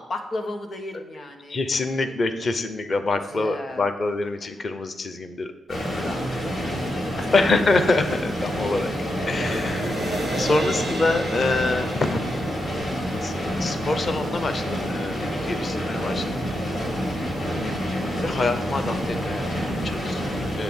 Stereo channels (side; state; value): both; normal; correlation 0.85